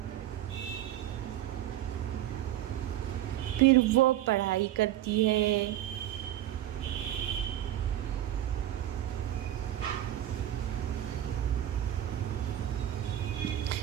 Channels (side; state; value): left; quieter; 12.8 dB